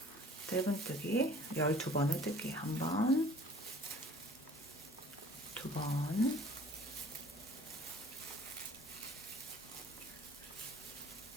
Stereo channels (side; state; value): both; normal; correlation 0.51